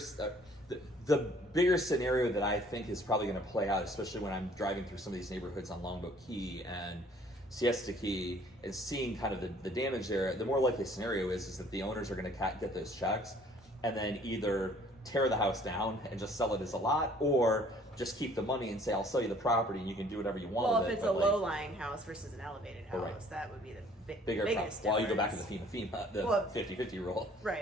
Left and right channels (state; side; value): normal; both; correlation 0.57